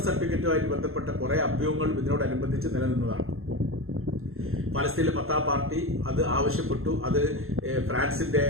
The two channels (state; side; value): late; left; 0.62 ms